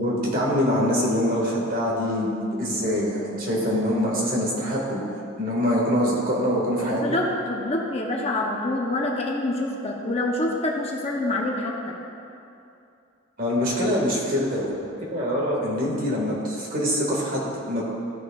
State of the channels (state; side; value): normal; both; correlation 0.38